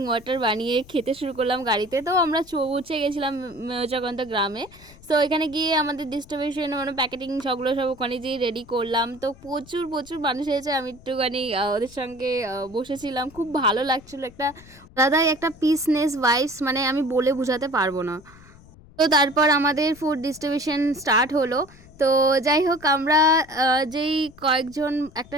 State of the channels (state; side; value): noise; left; rumble, 23 dB below the sound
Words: ওয়াটার বানিয়ে খেতে শুরু করলাম গাড়িতে। তো আমরা পৌঁছে গেছিলাম জগন্ত গ্রামে। সো এখানে গিয়ে আমাদের ডিস্ট্রিবিউশন মানে প্যাকেটিং সবগুলো সব ওখানে যেয়ে রেডি করলাম। তো প্রচুর প্রচুর মানুষ এসেছে, আমি একটুখানি ওদের সঙ্গে বসেছিলাম, খুব ভালো লাগছিলো। একটা আলাদাই একটা পিসনেস ভাইবস, মানে আমি বলে বোঝাতে পারবো না। তো তারপর আমাদের ফুড ডিস্ট্রিবিউশন স্টার্ট হলো। তো যাই হোক, আমরা যেই কয়েকজন একটা